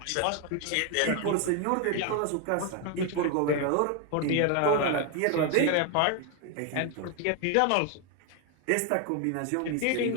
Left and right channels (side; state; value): both; different; correlation 0.01